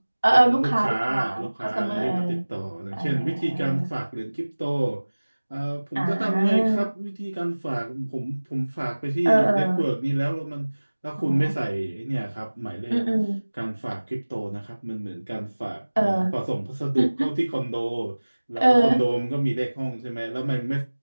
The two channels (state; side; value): inverted; both; correlation -1.00